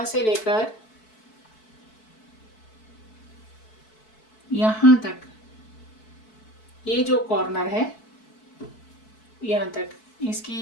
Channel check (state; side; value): late; right; 4.6 ms